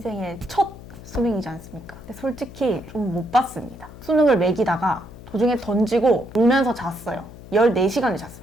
첫 수능이지 않습니까? 근데 솔직히 좀 못 봤습니다. 수능을 매기다가 도중에 던지고 울면서 잤어요. 14시간을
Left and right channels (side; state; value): left; noise; hum, 17 dB below the sound